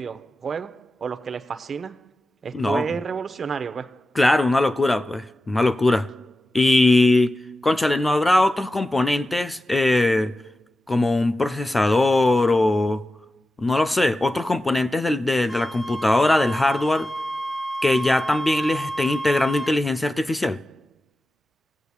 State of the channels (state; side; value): normal; both; correlation 0.93